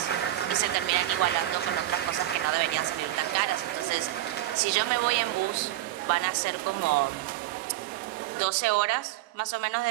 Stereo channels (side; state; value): left; quieter; 14.4 dB